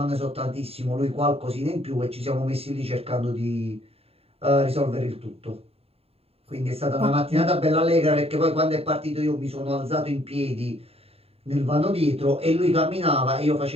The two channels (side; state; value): left; late; 0.29 ms